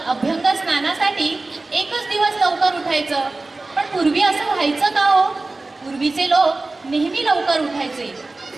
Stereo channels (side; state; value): left; quieter; 3.3 dB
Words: अभ्यंग स्नानासाठी एकच दिवस लवकर उठायचं. पण पूर्वी असं व्हायचं का हो? पूर्वीचे लोक नेहमी लवकर उठायचे.